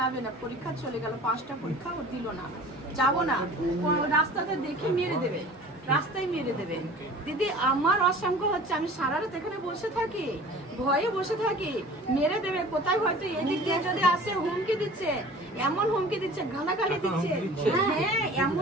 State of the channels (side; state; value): both; normal; correlation 0.43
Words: না, পরীক্ষা চলে গেল, 5টা পরীক্ষা ও দিল না, যাবো না, রাস্তাতে দেখে মেরে দেবে, রাস্তায় মেরে দেবে। দিদি আমার অসংখ্য হচ্ছে, আমি সারা রাত এখানে বসে থাকি, ভয়ে বসে থাকি, মেরে দেবে কোথায়, হয়তো এদিক দিয়ে যদি আসে হুমকি দিচ্ছে, এমন হুমকি দিচ্ছে, গালাগালি দিচ্ছে, হ্যাঁ